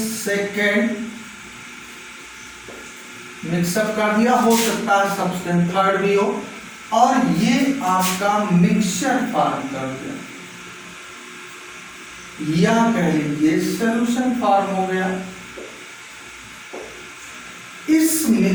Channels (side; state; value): both; identical; correlation 1.00